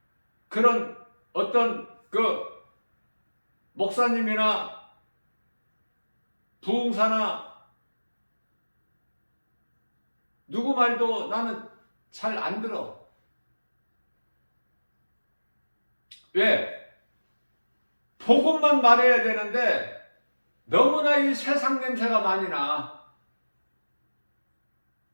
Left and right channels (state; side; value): inverted; both; correlation -1.00